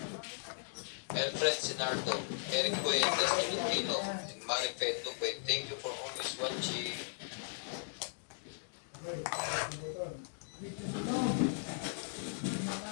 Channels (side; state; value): right; silent; digital silence